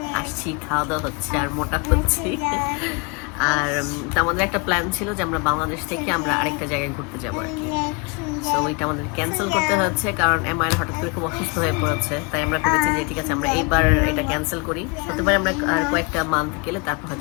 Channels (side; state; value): right; quieter; 32.1 dB